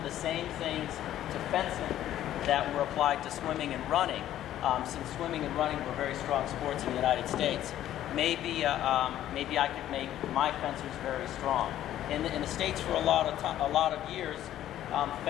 the same things to fencing that were applied to swimming and running, since swimming and running were very strong sports in the United States, maybe I could make my fencers very strong. In the States for a lot of years,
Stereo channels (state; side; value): quieter; right; 12.4 dB